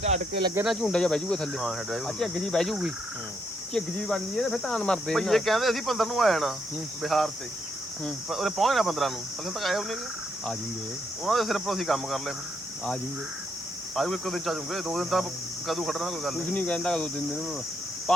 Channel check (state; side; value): normal; both; correlation 0.76